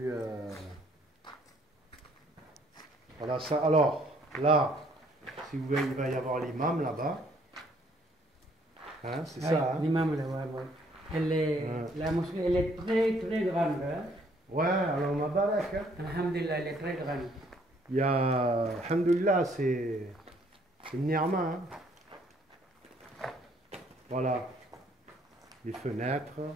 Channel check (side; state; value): both; normal; correlation 0.64